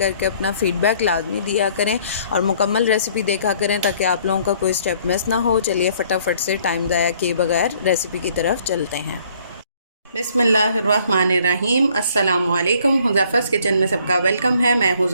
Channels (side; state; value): both; inverted; correlation -0.61